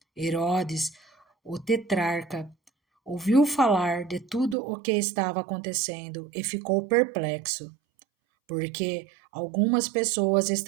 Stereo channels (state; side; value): drops out; left; at 4.5 s